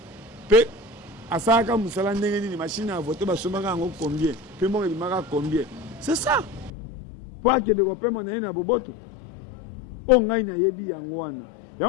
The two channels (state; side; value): drops out; right; at 6.7 s